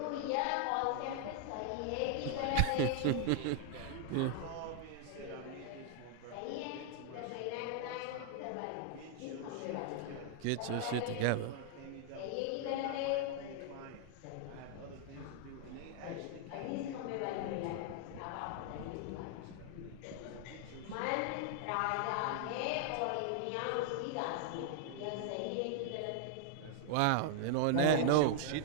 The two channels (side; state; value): both; different; correlation -0.01